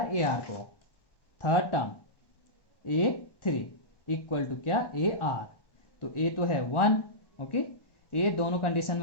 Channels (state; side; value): late; right; 1.1 ms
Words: ar को। Third term a3 equal to क्या ar, तो a तो है 1, ओके, a दोनों कंडीशन